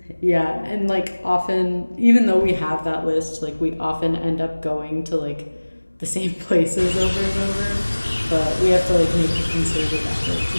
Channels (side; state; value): both; inverted; correlation -1.00